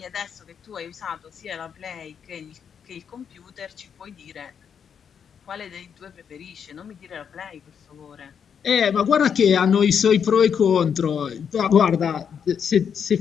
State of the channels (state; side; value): quieter; right; 7.4 dB